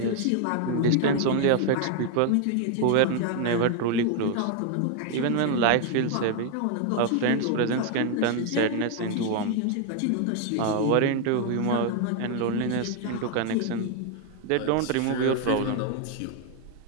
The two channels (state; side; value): different; both; correlation 0.00